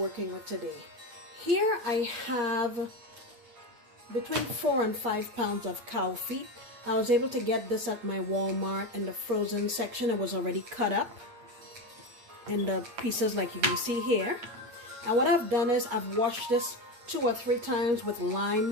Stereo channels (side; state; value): left; late; 8.9 ms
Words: with today. Here I have between 4 and 5 pounds of cow feet. I was able to get this at my Walmart in the frozen section. It was already cut up in the pieces like you can see here. And what I've done is I've washed this 2 or 3 times with